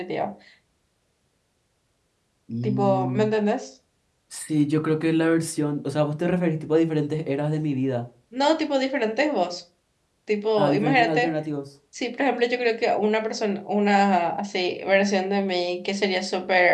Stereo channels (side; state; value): both; identical; correlation 1.00